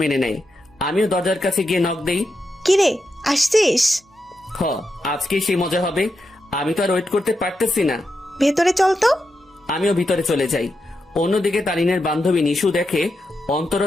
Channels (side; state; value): both; normal; correlation 0.86